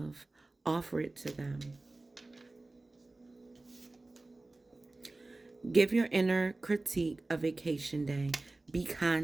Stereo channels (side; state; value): left; quieter; 3.0 dB